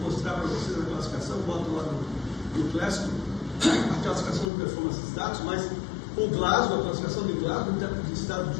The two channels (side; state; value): right; drops out; at 4.5 s